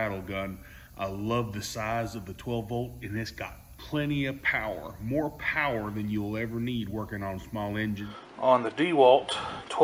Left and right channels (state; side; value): identical; both; correlation 1.00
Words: gun. I love the size of the 12 volt, and it's got plenty of power, more power than you'll ever need working on small engines. On the Dewalt